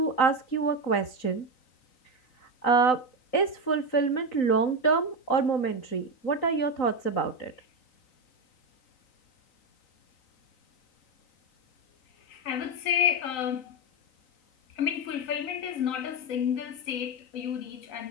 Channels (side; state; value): right; late; 3.9 ms